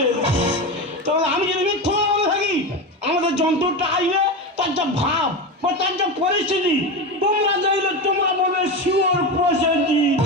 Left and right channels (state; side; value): normal; both; correlation 0.20